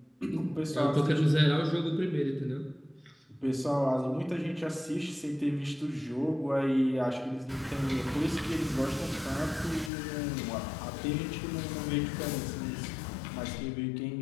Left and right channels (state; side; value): drops out; right; at 9.9 s